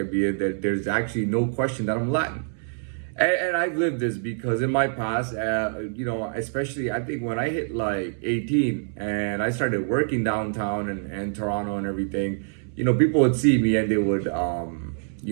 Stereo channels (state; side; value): silent; left; 60 dB below the other